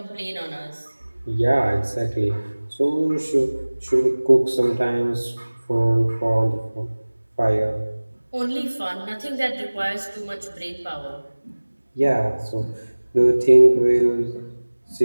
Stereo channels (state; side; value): inverted; both; correlation -1.00